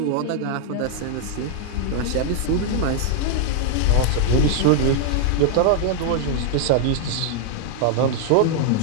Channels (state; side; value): different; both; correlation 0.00